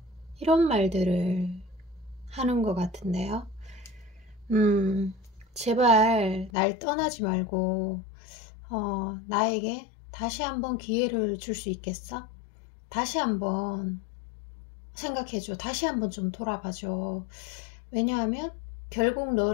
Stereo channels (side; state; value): right; drops out; at 6.5 s